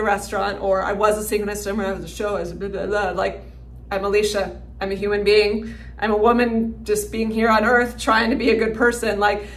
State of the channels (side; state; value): both; identical; correlation 1.00